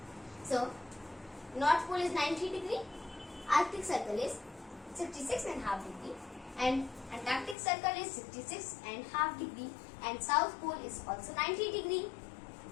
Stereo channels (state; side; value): drops out; right; at 7.6 s